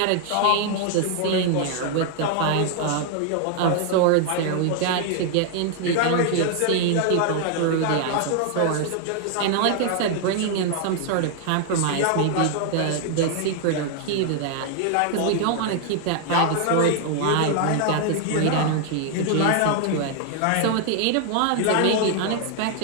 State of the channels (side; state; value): both; different; correlation 0.00